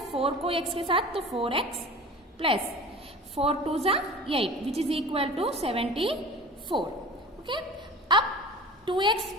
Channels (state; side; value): normal; both; correlation 0.38